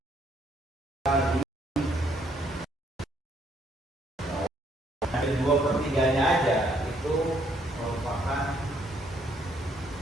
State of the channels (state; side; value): normal; both; correlation 0.69